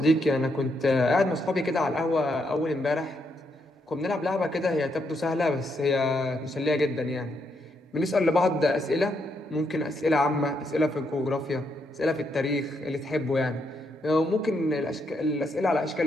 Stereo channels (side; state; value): both; normal; correlation 0.78